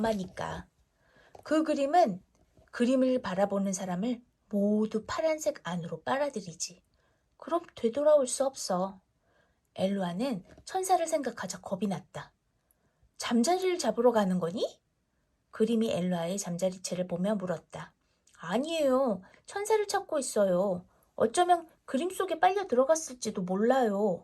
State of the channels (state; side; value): identical; both; correlation 1.00